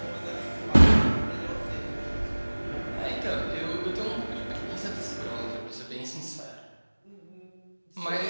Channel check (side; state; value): both; inverted; correlation -1.00